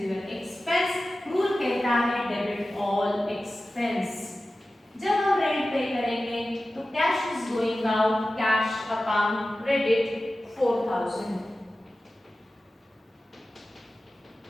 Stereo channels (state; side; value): normal; both; correlation 0.95